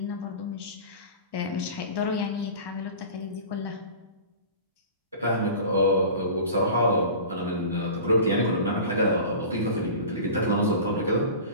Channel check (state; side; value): inverted; both; correlation -0.36